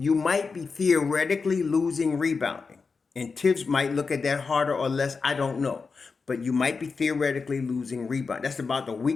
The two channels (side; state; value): right; quieter; 4.8 dB